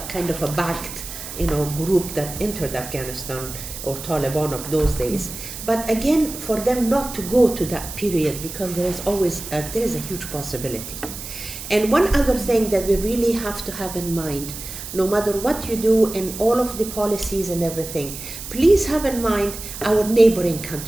kind of a backed group that entered Afghanistan, or Taliban of those days, but again, for them not to go to that period, because there is a huge possibility. And one other thing that we really have to have in mind, no matter what you do in all of the policies and everything, please have in mind our neighboring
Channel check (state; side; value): noise; right; hiss, 10 dB below the sound